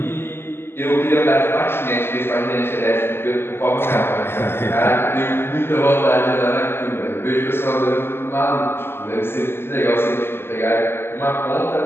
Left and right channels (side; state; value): right; late; 0.11 ms